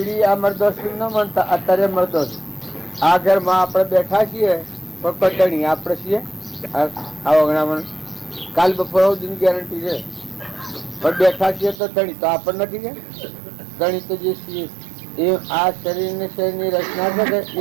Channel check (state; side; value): drops out; left; at 11.8 s